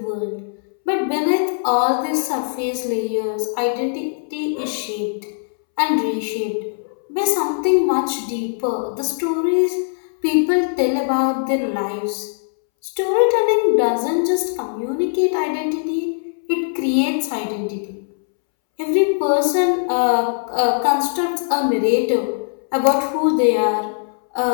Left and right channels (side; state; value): right; silent; 65 dB below the other